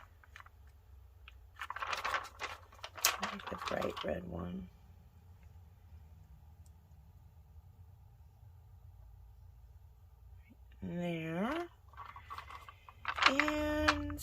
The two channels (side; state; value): both; identical; correlation 1.00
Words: I like the bright red one. There. And